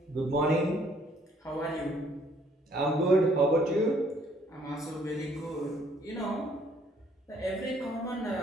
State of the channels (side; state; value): both; normal; correlation 0.63